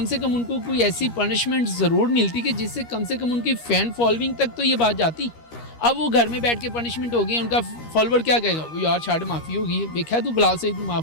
से कम उनको कोई ऐसी पनिशमेंट ज़रूर मिलती कि जिससे कम से कम उनकी फ़ैन फॉलोइंग तक तो ये बात जाती। अब वो घर में बैठ के पनिशमेंट हो गई, उनका फॉलोवर क्या कहेगा, वो यार छाड़ माफ़ी होगी, देखा तू बिलाल से तू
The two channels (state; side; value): late; right; 13 ms